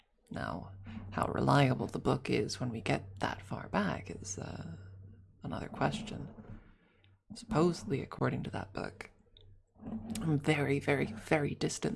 Now, how reliable the book is when we get that far back is another question. Supposedly, according to that book, I'm very, very, very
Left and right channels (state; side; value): identical; both; correlation 1.00